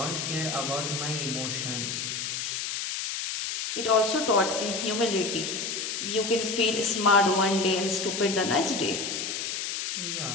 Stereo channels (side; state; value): left; noise; hiss, 3 dB below the sound